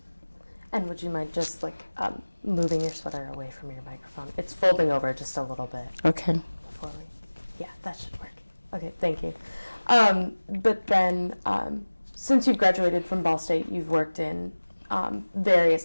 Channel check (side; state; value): both; inverted; correlation -1.00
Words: And would you mind just moving your sweater away from your microphone? It's folding over just a little bit. Okay. Before yeah, that should work. Okay, thank you. But then, since you've graduated from Ball State, you've worked in various